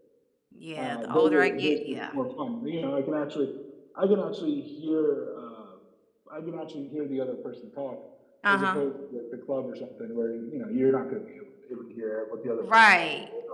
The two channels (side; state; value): both; identical; correlation 1.00